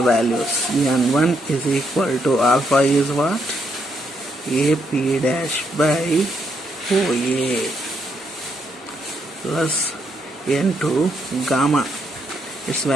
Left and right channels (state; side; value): normal; both; correlation 0.76